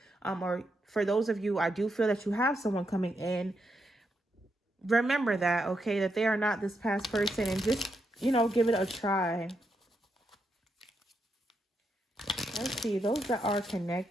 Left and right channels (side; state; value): both; normal; correlation 0.82